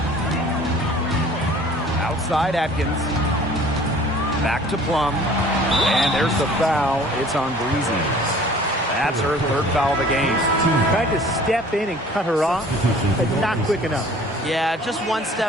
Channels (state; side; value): normal; both; correlation 0.50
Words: Outside Atkins. Back to Plum. And there's the foul. It's on Breezy. That's her third foul of the game. Tried to step in and cut her off, but not quick enough. Yeah, just one